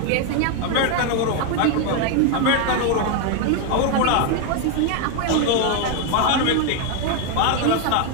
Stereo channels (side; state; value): both; different; correlation 0.01